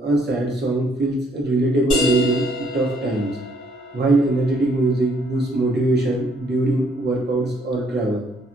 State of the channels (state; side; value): normal; both; correlation 0.66